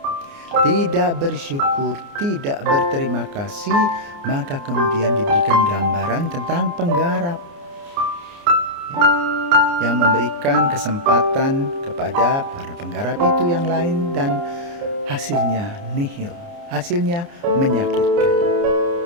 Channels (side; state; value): left; late; 29 ms